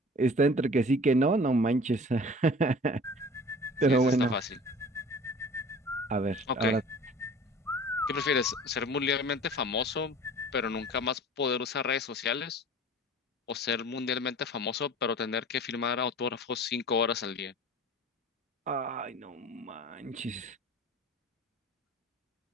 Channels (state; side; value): normal; both; correlation 0.43